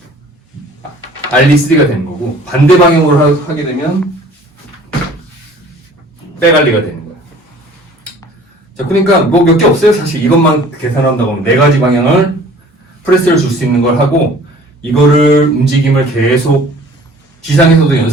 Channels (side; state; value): both; normal; correlation 0.50